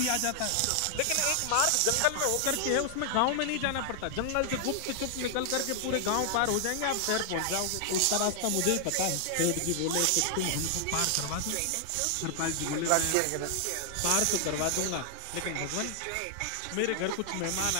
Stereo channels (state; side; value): different; both; correlation 0.00